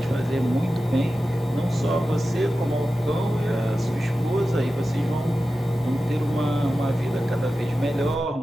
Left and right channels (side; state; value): both; normal; correlation 0.93